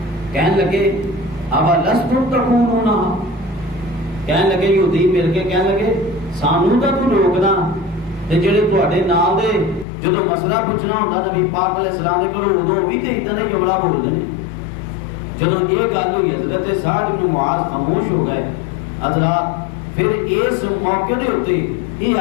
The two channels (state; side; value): drops out; right; at 9.9 s